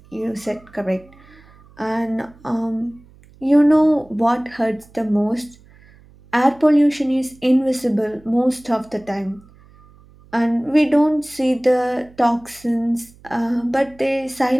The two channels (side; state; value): right; noise; hum, 26 dB below the sound